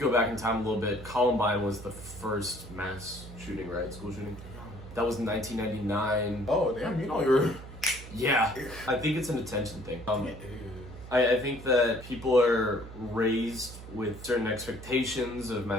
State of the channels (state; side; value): noise; right; hum, 14 dB below the sound